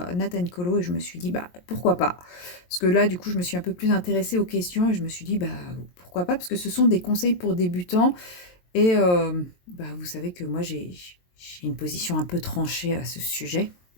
Nathan Colo et je me suis dit: «Bah, pourquoi pas?» Parce que là, du coup, je me suis un peu plus intéressée aux questions et je me suis dit: «Bah, pourquoi pas?» parce que ce sont des conseils pour débutants et bah, vous savez que moi j'ai une position un peu tranchée à ce sujet.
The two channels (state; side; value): late; right; 23 ms